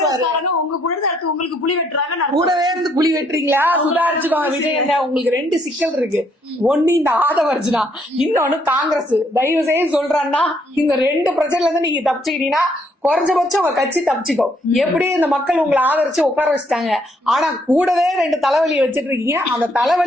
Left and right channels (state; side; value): normal; both; correlation 0.70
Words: உங்க கூட உங்களுக்கு புலி வெட்டுறாங்க, கூடவே இருந்து புலி வெட்டுறீங்களா? சுதாரிச்சுக்கோங்க விஜய் அண்ணா. உங்களுக்கு 2 சிக்கல் இருக்கு. ஒண்ணு இந்த ஆதவர்ஜுனா, இன்னொன்னு காங்கிரஸ். தயவு செய்து சொல்றான்னா, இந்த 2 பிரச்சனைல இருந்து நீங்க தப்பிச்சுக்கிட்டீங்கன்னா குறைஞ்சபட்சம் உங்க கட்சி தப்பிச்சுக்கோ. எப்படி இந்த மக்கள் உங்களை ஆதரிச்சு உட்கார வச்சுட்டாங்க, ஆனா கூடவே 2 தலைவலியை வச்சிட்டு இருக்கீங்க. அந்த